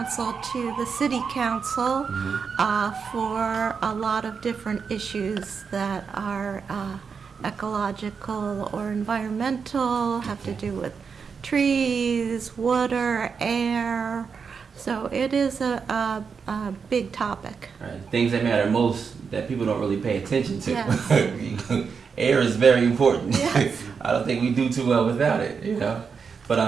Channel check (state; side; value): quieter; left; 5.8 dB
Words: to the city council for a lot of different issues that are ecological or environmental, have to do with trees, water, air. So it is a big topic. Right. Things that matter most that people don't really pay attention to. Yes. Air is very important. Yes. I don't think we do too well without it, you know.